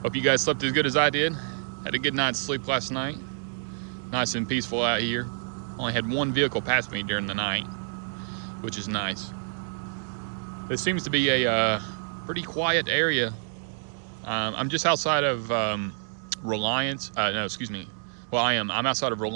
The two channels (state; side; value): silent; left; digital silence